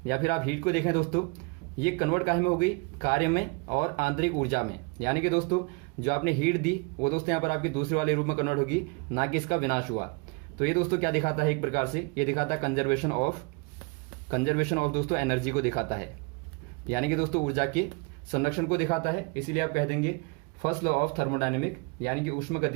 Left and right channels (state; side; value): quieter; left; 30.8 dB